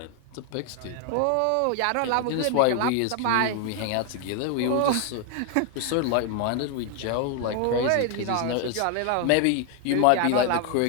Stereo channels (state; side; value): different; both; correlation 0.00